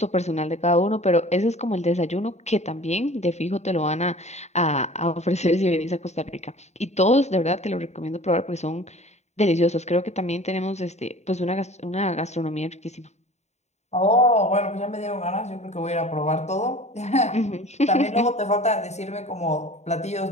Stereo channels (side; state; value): right; late; 0.32 ms